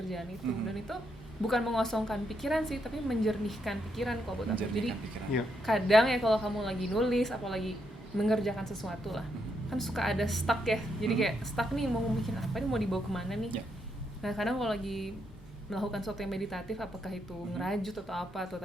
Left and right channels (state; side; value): normal; both; correlation 0.79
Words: itu, dan itu bukan mengosongkan pikiran sih, tapi menjernihkan pikiran kalau buat aku. Jadi menjernihkan pikiran. Iya. kadang ya kalau kamu lagi nulis apalagi mengerjakan sesuatu lah, kan suka ada stuck ya, jadi kayak stuck nih, mau bikin apa nih, mau dibawa kemana nih. Ya. Nah kadang kalau lagi melakukan sesuatu yang meditatif, apakah itu ngerajut atau apa, atau